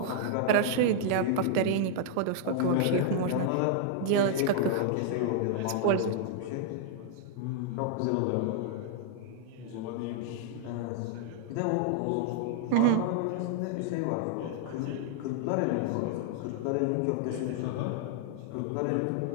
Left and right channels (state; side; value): different; both; correlation -0.01